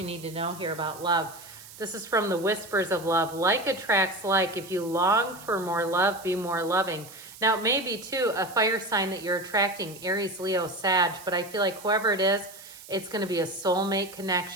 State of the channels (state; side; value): noise; right; hiss, 18 dB below the sound